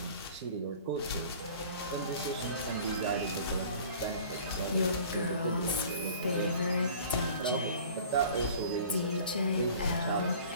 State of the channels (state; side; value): inverted; both; correlation -0.46